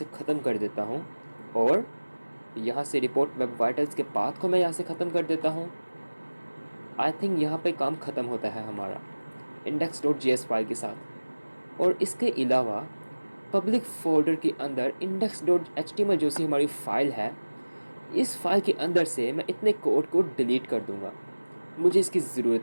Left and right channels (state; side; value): inverted; both; correlation -1.00